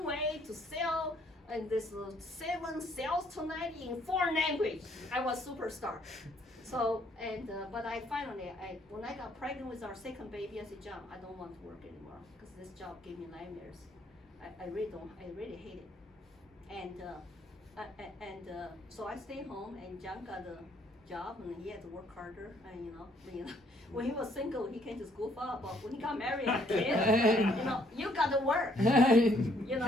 way to sell and this 7 sales tonight in 4 languages. I was superstar. So, but I finally, when I got pregnant with our second baby, I said, John, I don't want to work anymore because this job gave me nightmares. I really hate it. And so I stayed home, and John got a job, and he had to work harder. And when he was single, he can just goof up. But when he got married and kids, you got to work.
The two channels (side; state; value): both; normal; correlation 0.66